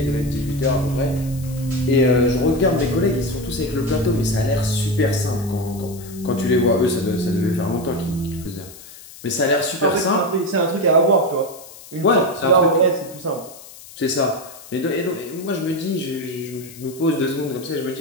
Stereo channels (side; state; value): left; noise; hiss, 18 dB below the sound